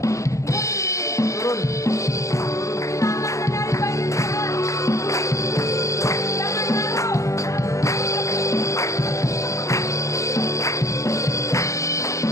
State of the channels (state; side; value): late; right; 0.15 ms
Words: Turun. Kita akan menari bagi Tuhan. Jangan malu.